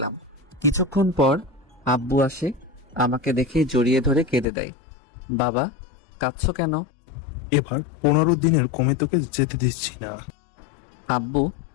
কিছুক্ষণ পর আব্বু আসে, আমাকে দেখে জড়িয়ে ধরে কেঁদে দেয়। বাবা, কাঁদছো কেন? এবার 15 দিনের কমে তোকে যেতে দিচ্ছি না। আব্বু,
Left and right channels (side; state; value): right; drops out; at 4.5 s